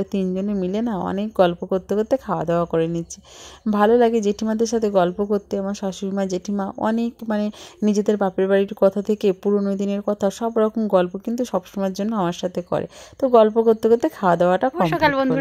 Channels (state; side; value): identical; both; correlation 1.00